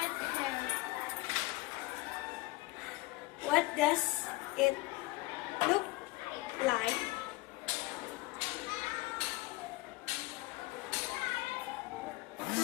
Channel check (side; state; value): right; quieter; 20.9 dB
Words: hair. What does it look like?